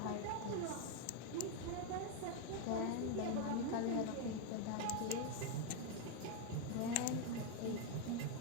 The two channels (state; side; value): different; both; correlation 0.01